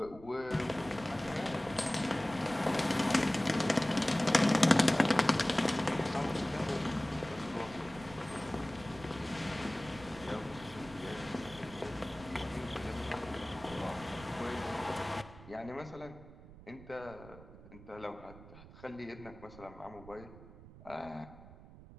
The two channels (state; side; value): noise; right; rumble, 18 dB below the sound